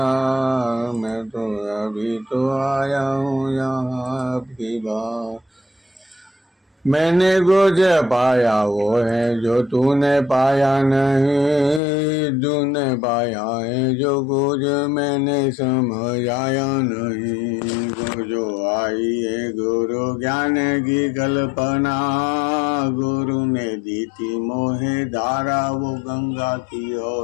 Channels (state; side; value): drops out; right; at 11.8 s